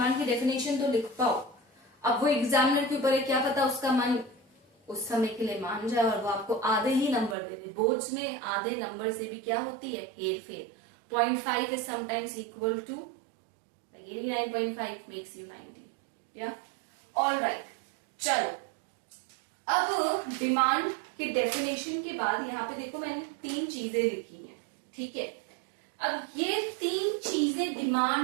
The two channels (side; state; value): left; drops out; at 7.4 s